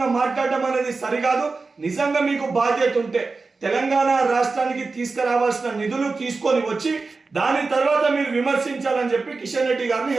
మాట్లాడడం అనేది సరికాదు. నిజంగా మీకు బాధ్యత ఉంటే తెలంగాణ రాష్ట్రానికి తీసుకురావాల్సిన నిధులు తీసుకొని వచ్చి దాని తర్వాత మీరు విమర్శించాలని చెప్పి కిషన్ రెడ్డి గారిని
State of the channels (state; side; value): quieter; left; 4.1 dB